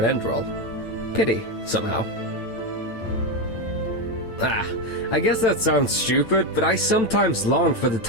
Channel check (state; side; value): late; right; 8.9 ms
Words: Enderal. Pity, somehow. I guess that sounds stupid, but I sometimes long for the